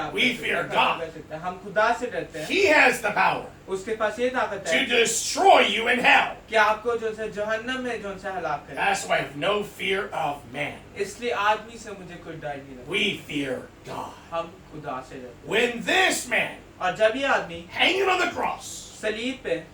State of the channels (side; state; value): both; identical; correlation 1.00